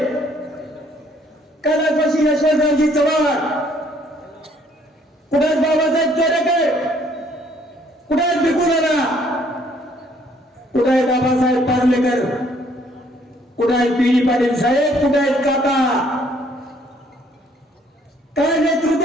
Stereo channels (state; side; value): normal; both; correlation 0.63